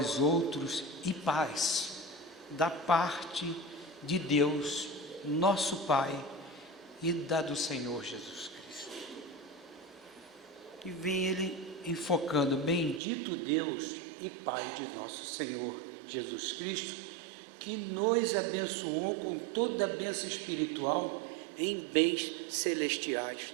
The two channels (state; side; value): drops out; left; at 13.0 s